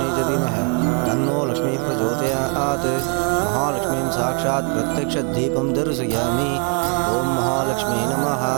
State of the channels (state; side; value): quieter; left; 39.5 dB